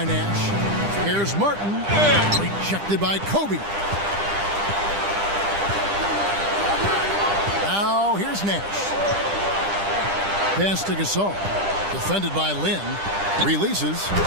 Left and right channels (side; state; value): left; late; 10 ms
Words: Nash. Here's Martin. Rejected by Kobe. Now here's Nash. Pass to Gasol. Defended by Lynn. Releases.